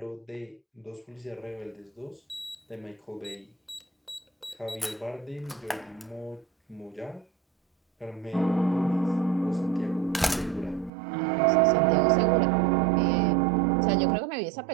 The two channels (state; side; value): drops out; left; at 10.9 s